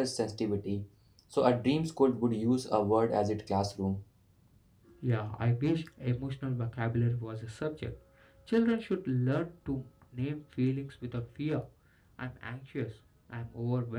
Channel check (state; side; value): identical; both; correlation 1.00